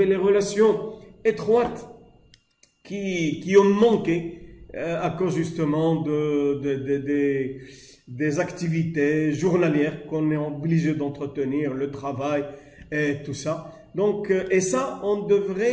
les relations étroites qui ont manqué à cause justement des activités journalières qu'on est obligé d'entretenir, le travail et tout ça. Donc, et ça, on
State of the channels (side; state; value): both; identical; correlation 1.00